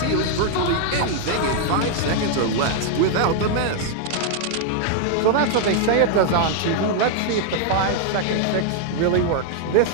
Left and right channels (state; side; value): different; both; correlation 0.00